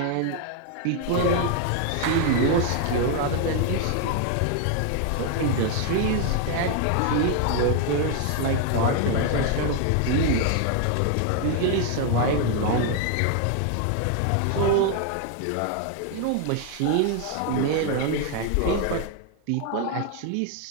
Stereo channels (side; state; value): both; different; correlation 0.00